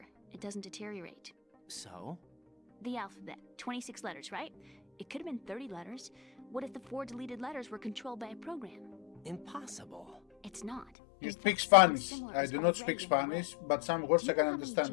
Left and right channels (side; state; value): right; drops out; at 10.9 s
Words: It doesn't deteriorate. So? The alphabet, 26 letters, right? It could have been 30 letters. What if the 4 deleted letters were controlled by a program? Impossible. It's not. you In speak fact, Spanish. something similar I is do not already speak in the Spanish, works. but some words Do you I can know how many understand.